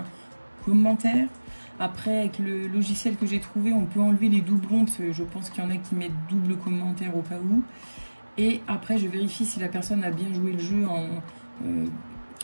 commentaires. Après, avec le logiciel que j'ai trouvé, on peut enlever les doublons, parce que je pense qu'il y en a qui mettent double commentaire au cas où. Et après, je vérifie si la personne a bien joué le jeu en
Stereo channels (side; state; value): both; inverted; correlation -1.00